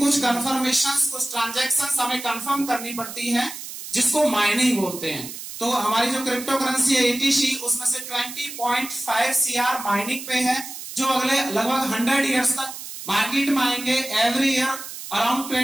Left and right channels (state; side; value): noise; right; hiss, 11 dB below the sound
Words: कंफर्मेशंस, कुछ ट्रांजैक्शंस हमें कंफर्म करनी पड़ती है, जिसको माइनिंग बोलते हैं। तो हमारी जो क्रिप्टो करेंसी है एटीसी, उसमें से 20.5 सीआर माइनिंग पे है, जो अगले लगभग 100 ईयर्स तक मार्केट में आएंगे। एवरी ईयर अराउंड